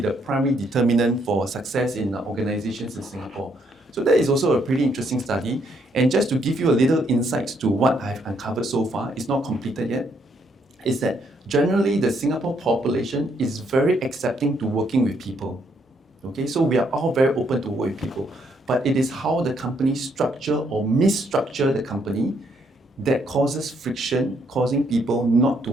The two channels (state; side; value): normal; both; correlation 0.72